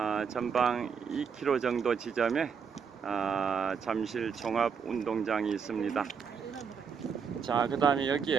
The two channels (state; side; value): quieter; left; 6.5 dB